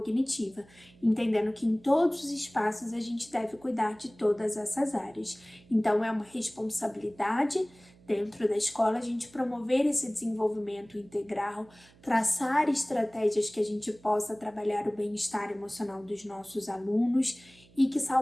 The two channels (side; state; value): right; noise; hum, 27 dB below the sound